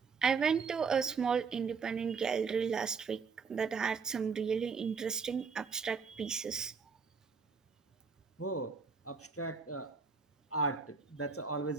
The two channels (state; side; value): quieter; left; 5.4 dB